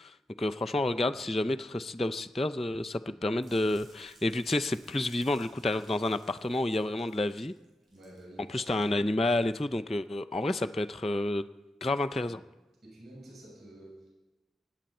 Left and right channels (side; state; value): both; normal; correlation 0.86